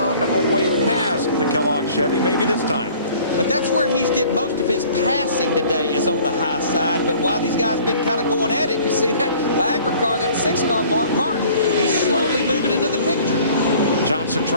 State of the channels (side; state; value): both; inverted; correlation -0.51